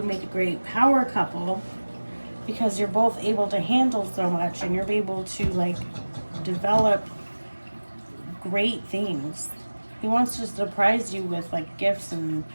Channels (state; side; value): inverted; both; correlation -1.00